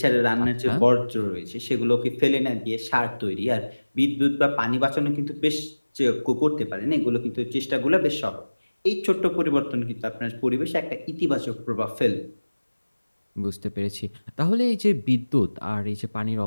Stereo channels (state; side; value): inverted; both; correlation -1.00